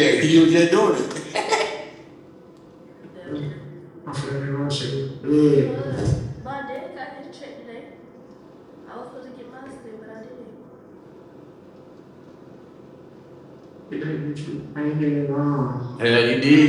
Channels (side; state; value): both; identical; correlation 1.00